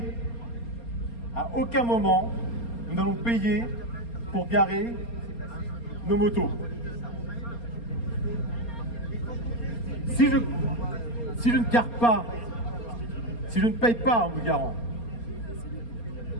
à aucun moment, nous n'allons payer pour garer nos motos. Si je ne gare pas, si je ne paye pas en me garant,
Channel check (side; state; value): right; late; 4.3 ms